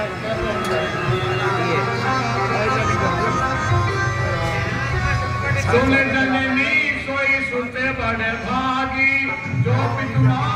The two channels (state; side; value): identical; both; correlation 1.00